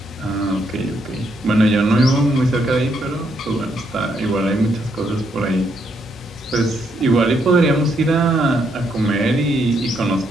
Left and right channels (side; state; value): both; normal; correlation 0.75